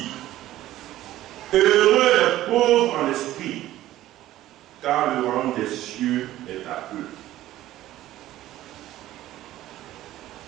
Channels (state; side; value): quieter; left; 14.5 dB